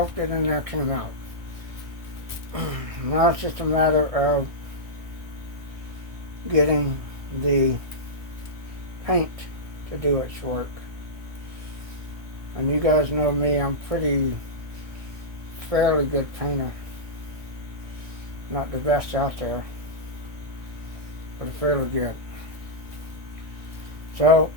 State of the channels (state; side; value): late; left; 1.6 ms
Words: in there came out. Now it's just a matter of getting the paint to do its work. And you guys know me, I'm fairly good painter. Not the best out there, but fairly good. So,